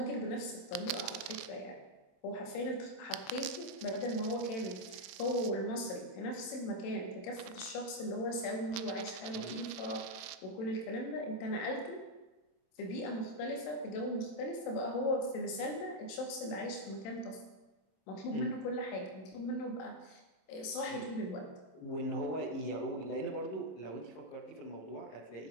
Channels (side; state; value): right; late; 27 ms